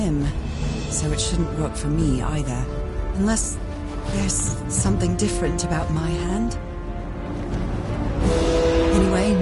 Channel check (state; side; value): identical; both; correlation 1.00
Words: so it shouldn't work for me either. Unless there's something different about my hand. Anyway,